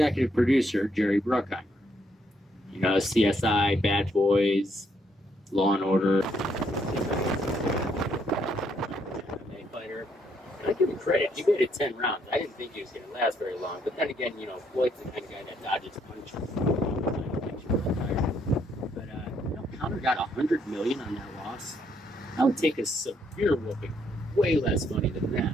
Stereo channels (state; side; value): normal; both; correlation 0.72